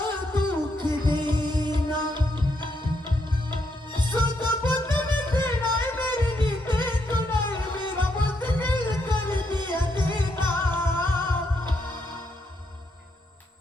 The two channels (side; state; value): both; normal; correlation 0.77